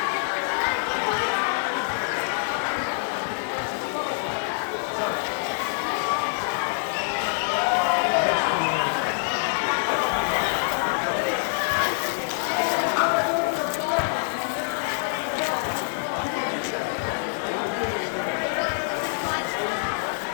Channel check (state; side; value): silent; right; digital silence